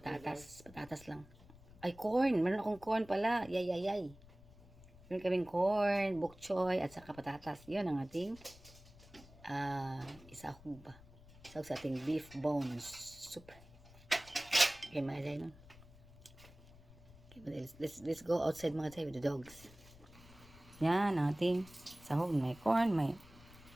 Patatas lang. Ay, corn. Meron akong corn pala. Yay. Meron kaming corn, bok choy, at saka patatas. Yun ang ating isahog ba? Isahog sa ating beef bones soup. Okay, mga Jay, no? Okay, let's go outside mga Jay with the dogs. Yan, ang ating sahog. May corn, may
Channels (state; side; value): noise; left; rumble, 22 dB below the sound